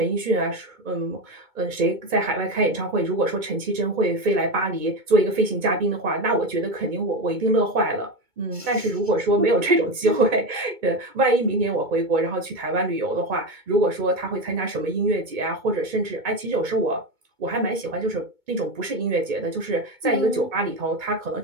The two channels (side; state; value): left; late; 2.2 ms